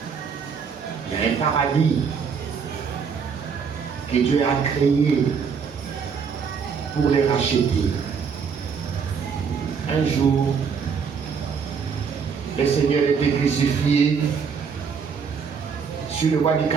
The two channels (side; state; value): left; quieter; 6.2 dB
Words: Il y a un paradis que Dieu a créé pour les racheter. Un jour, le Seigneur était crucifié sur le bois du